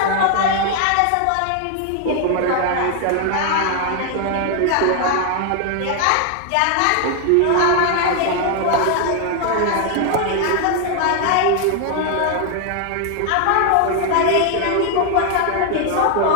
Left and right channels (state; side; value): different; both; correlation 0.00